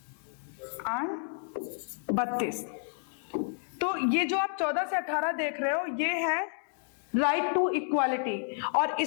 और 32। तो ये जो आप 14 से 18 देख रहे हो ये है राइट टू इक्वालिटी, और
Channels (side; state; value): right; silent; 57 dB below the other